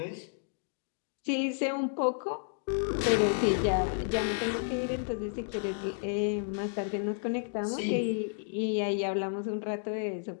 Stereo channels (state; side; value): silent; right; digital silence